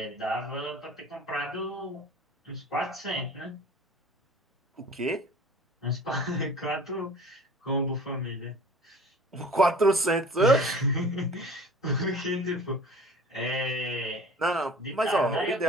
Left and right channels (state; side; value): normal; both; correlation 0.44